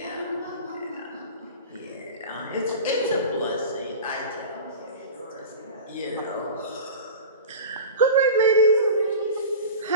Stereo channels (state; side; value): inverted; both; correlation -0.33